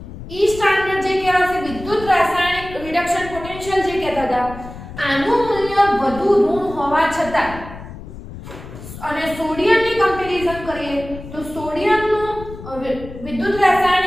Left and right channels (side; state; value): left; noise; rumble, 13 dB below the sound